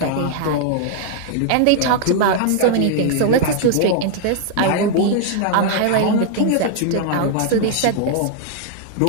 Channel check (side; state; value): both; different; correlation 0.00